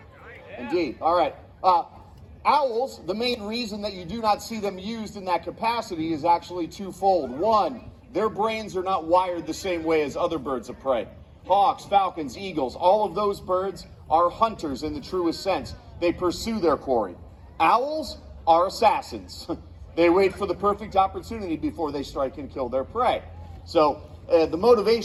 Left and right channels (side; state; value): both; identical; correlation 1.00